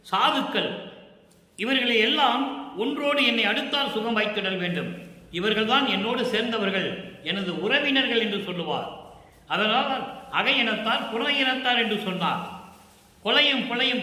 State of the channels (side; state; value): both; identical; correlation 1.00